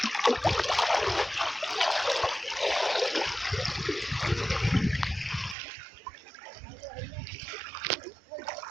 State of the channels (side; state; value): left; drops out; at 5.6 s